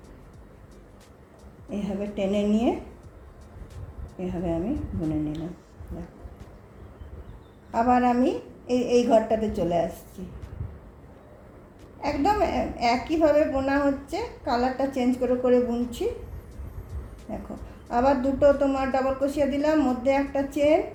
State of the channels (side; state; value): both; identical; correlation 1.00